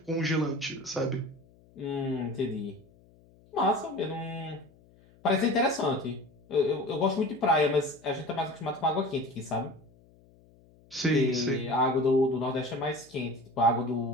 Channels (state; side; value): noise; left; hum, 28 dB below the sound